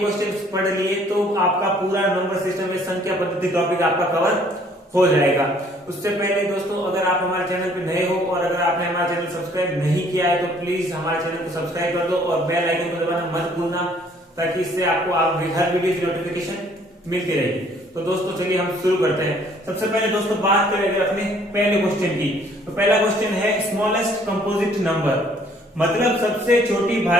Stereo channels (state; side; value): normal; both; correlation 0.60